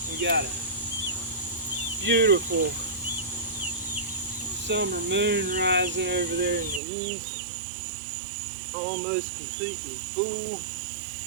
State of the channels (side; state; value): left; drops out; at 6.8 s